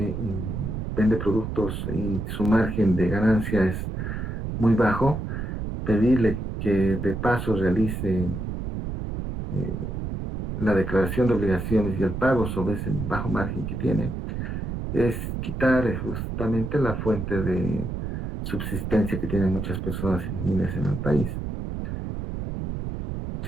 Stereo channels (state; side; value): noise; right; rumble, 4 dB below the sound